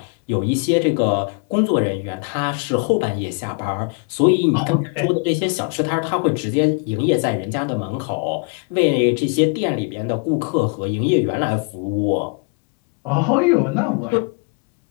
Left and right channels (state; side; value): quieter; right; 34.2 dB